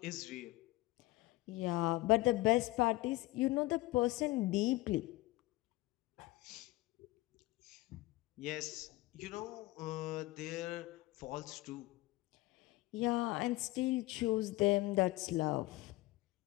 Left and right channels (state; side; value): quieter; right; 19.5 dB